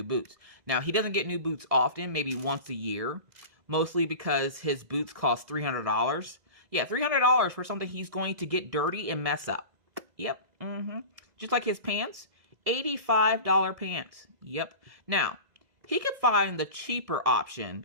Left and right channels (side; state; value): left; late; 2.0 ms